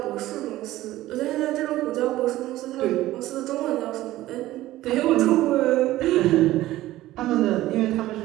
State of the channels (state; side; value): quieter; left; 15.8 dB